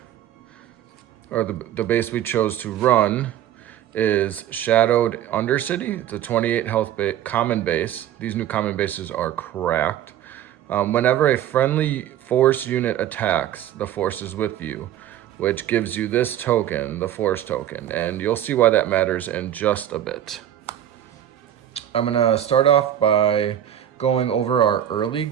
or the base we chose to run, is Shadowed Undercity. It's a 28 health common base. These new common bases are cracked. Whenever a friendly force unit attacks, the force is with you, which gives you this token, the force token. And you'll see why that matters in just a bit. I'm going to start off by going over our early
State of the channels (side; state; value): left; quieter; 11.2 dB